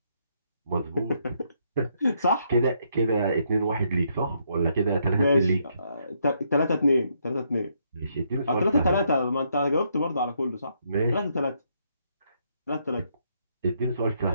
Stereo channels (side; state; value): both; inverted; correlation -0.74